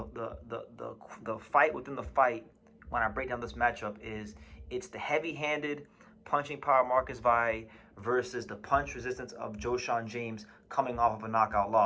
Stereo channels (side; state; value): both; identical; correlation 1.00